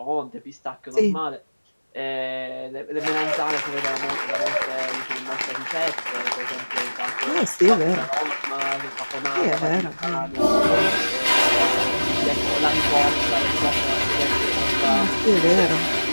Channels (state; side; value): inverted; both; correlation -1.00